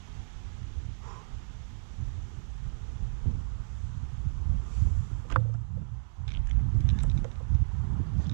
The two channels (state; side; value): silent; left; digital silence